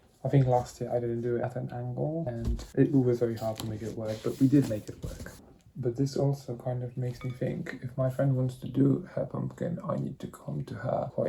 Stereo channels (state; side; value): identical; both; correlation 1.00